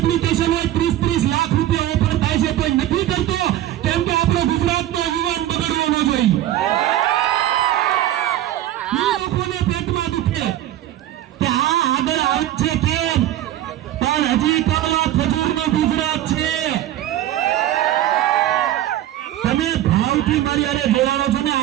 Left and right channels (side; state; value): left; quieter; 13.3 dB